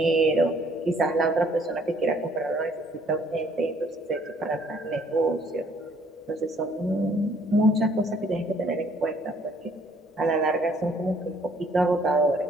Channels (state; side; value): normal; both; correlation 0.62